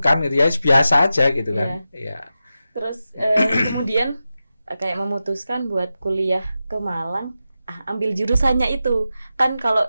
gitu ya, biasa aja gitu kan. Iya. Terus kemudian kayak memutuskan buat kuliah ke Malang, ambil jurusannya itu. Kan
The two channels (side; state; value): both; inverted; correlation -0.91